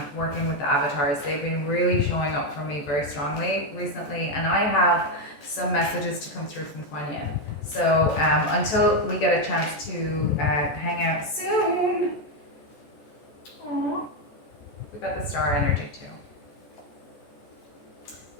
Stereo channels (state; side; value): late; right; 14 ms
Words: working with the avatars. They've been really showing up for me very strongly recently, and I have some messages to come through from Kuan Yin. So until we get a chance to hang out soon, aww, we got the star energy too.